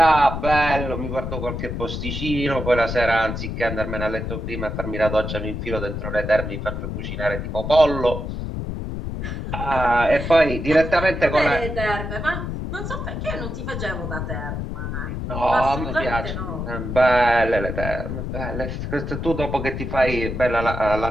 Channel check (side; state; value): left; noise; rumble, 5 dB below the sound